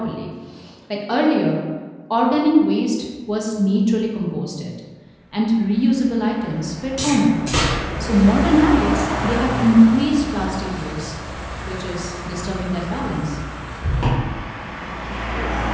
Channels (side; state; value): both; identical; correlation 1.00